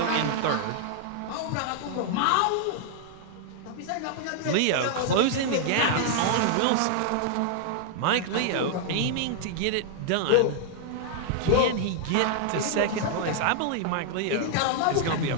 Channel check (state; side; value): different; both; correlation -0.01